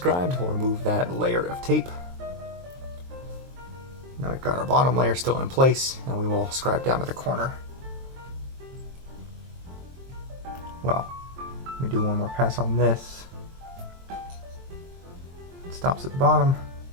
we'll remove that layer of tape. Now we've got our bottom layer still in place, and we will scribe down to the corner. Well, let me do one more pass on this. It stops at the bottom.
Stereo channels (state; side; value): late; left; 23 ms